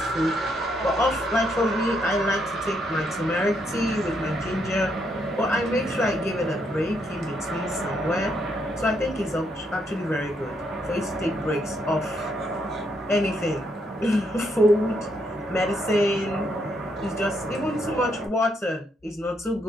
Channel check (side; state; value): both; normal; correlation 0.75